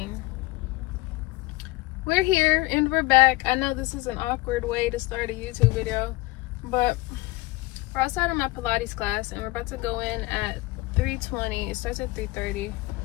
We're here and we're back. I know this is an awkward way to start a YouTube video, but we're outside of my Pilates class and we're about to go in at 3:20. It starts at 3:30.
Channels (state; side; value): quieter; right; 20.8 dB